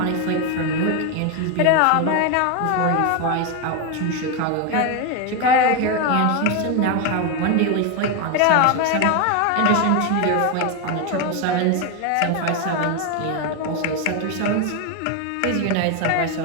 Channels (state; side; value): different; both; correlation 0.02